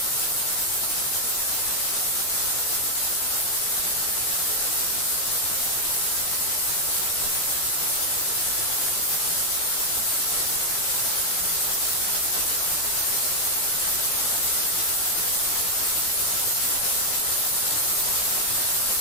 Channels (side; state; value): right; late; 17 ms